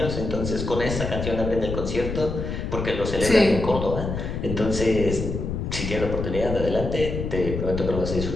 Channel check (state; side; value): noise; left; rumble, 4 dB below the sound